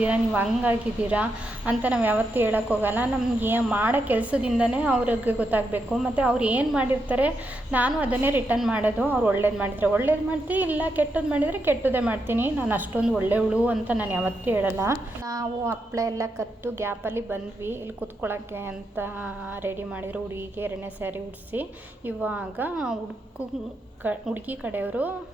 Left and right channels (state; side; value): normal; both; correlation 0.83